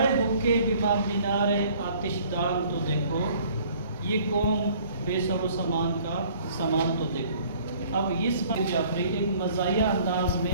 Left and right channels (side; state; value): both; inverted; correlation -0.56